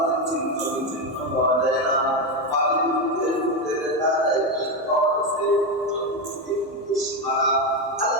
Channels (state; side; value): normal; both; correlation 0.11